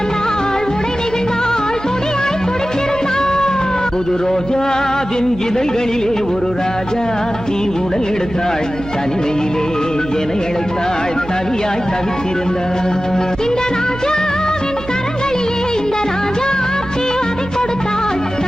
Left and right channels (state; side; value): noise; right; hum, 13 dB below the sound